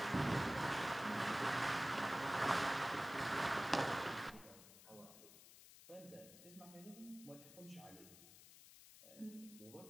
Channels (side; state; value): left; noise; hiss, 18 dB below the sound